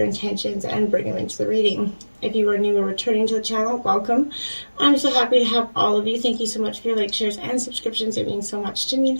intentions, and bring them into the reading. If you are new or returning to the channel, welcome. I'm so happy to have all of you. Thank you so much for your likes, shares, and subscriptions. It means so much to me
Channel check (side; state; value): both; inverted; correlation -1.00